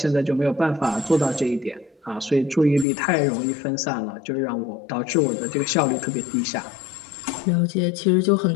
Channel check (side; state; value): right; drops out; at 2.9 s